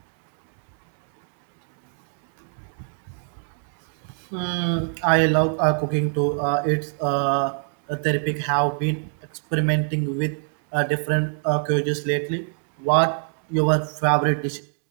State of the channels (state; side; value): silent; left; 62 dB below the other